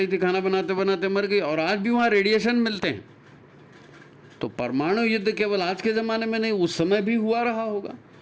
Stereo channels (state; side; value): identical; both; correlation 1.00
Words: थी, खाना बनाते बनाते मर गई। और आज भी वहाँ रेडिएशन मिलते हैं। तो परमाणु युद्ध केवल आज के ज़माने में नहीं, उस समय भी हुआ रहा होगा।